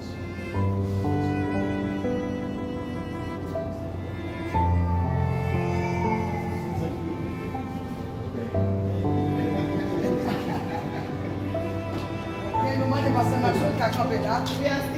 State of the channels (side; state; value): both; identical; correlation 1.00